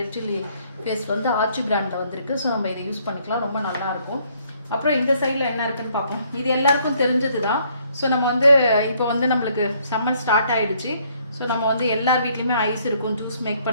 சில்லி பேஸ்ட் வந்து ஆச்சி பிராண்டில் வந்துருக்கு. ஸோ நம்ம இதை யூஸ் பண்ணிக்கலாம், ரொம்ப நல்லாயிருக்கும். அப்புறம் இந்த சைடில் என்ன இருக்குன்னு பார்ப்போம். இது எல்லாருக்கும் தெரிஞ்சது தான். ஸோ நம்ம வந்து இப்போ வந்து நம்மளுக்கு சம்மர் ஸ்டார்ட் ஆகிடுச்சு. ஸோ நம்ம வந்து எல்லார் வீட்லேயுமே ஐஸ் இருக்கும், ஜூஸ் மேக்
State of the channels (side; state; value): both; inverted; correlation -0.66